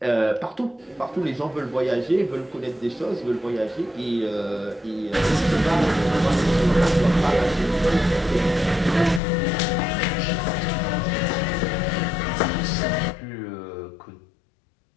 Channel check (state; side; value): drops out; right; at 9.2 s